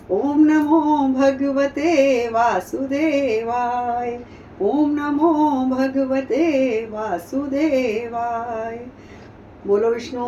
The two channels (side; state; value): both; identical; correlation 1.00